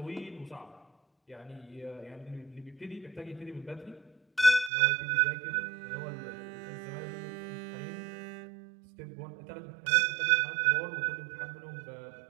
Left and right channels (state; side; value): drops out; left; at 4.7 s